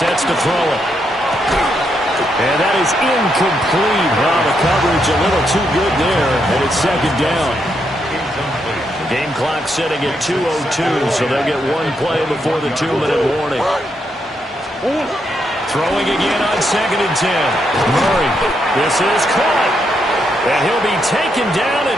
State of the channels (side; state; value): both; normal; correlation 0.79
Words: to throw it. And that is incomplete. Wow, the coverage a little too good there, and it's 2nd down. Game clock sitting at 2:02, so they'll get one play before the 2-minute warning. Throwing again on 2nd and 10. Murray, this is caught. And he'll be taken down